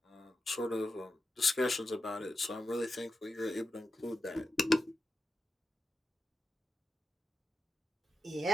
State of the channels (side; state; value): both; normal; correlation 0.89